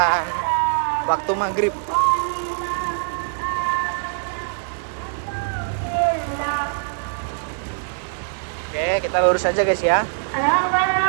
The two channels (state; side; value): silent; left; digital silence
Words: waktu maghrib. Oke, kita lurus aja guys ya.